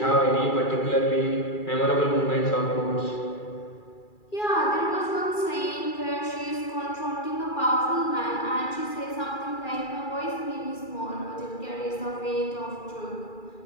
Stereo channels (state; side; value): late; right; 2.4 ms